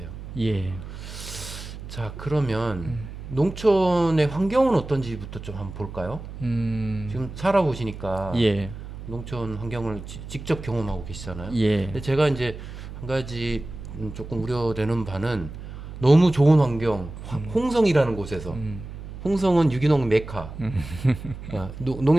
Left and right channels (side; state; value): right; noise; hum, 11 dB below the sound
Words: 예. 자, 그러면 농촌의 환경은 어떤지부터 좀 한번 볼까요? 지금 살아보시니까 예. 농촌 환경을 직접 경험하고 계시잖아요. 예. 근데 제가 이제 한 가지 조금 우려되는 바는 너무 좋은 환경, 홍성이라는 곳에서 홍성은 유기농 메카.